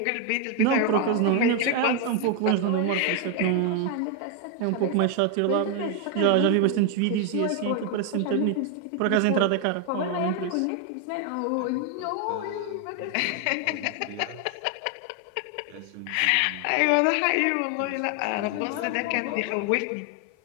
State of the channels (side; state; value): both; different; correlation 0.01